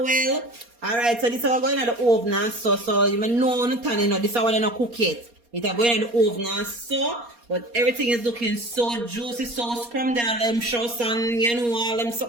Alright, so this is going in the oven, so you may know, this is how they not cook it. It's going in the oven, so, but everything is looking so juicy, so scrumbed, and them show some, you know, all them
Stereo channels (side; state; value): left; late; 4.2 ms